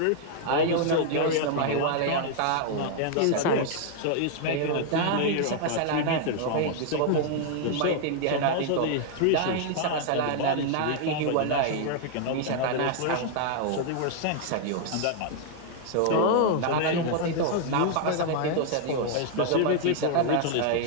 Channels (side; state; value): both; different; correlation 0.00